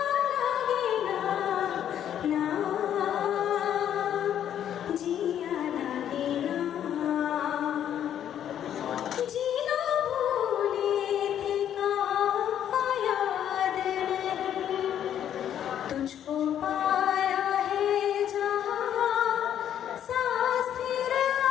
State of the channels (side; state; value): right; quieter; 10.1 dB